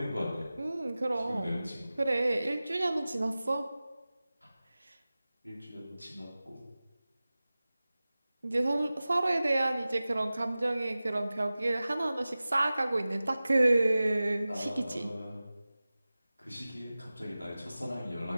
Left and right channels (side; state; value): both; inverted; correlation -0.97